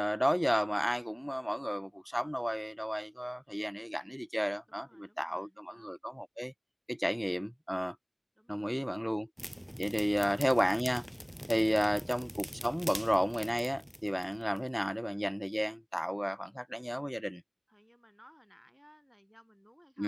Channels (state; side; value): identical; both; correlation 1.00